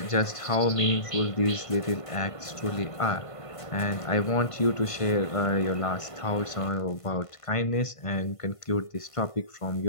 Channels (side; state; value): right; late; 1.5 ms